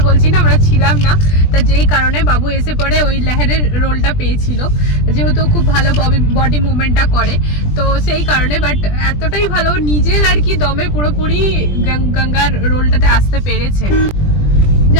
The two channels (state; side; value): late; right; 20 ms